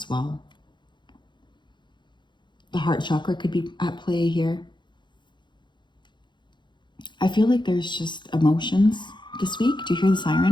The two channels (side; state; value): right; late; 0.22 ms